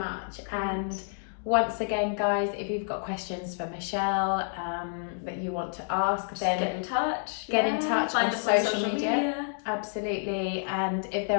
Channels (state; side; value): silent; right; digital silence